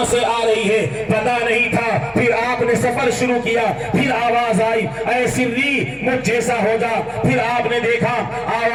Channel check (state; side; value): identical; both; correlation 1.00